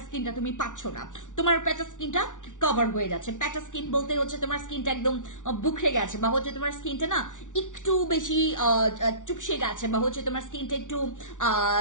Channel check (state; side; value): late; right; 0.87 ms